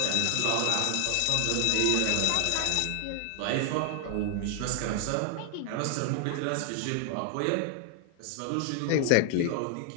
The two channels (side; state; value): both; different; correlation 0.00